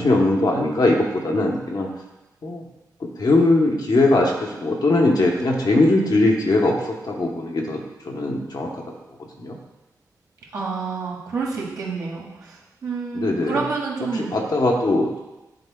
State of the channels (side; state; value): both; normal; correlation 0.82